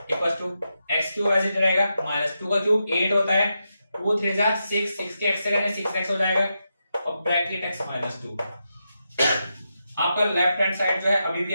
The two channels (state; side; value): inverted; both; correlation -0.86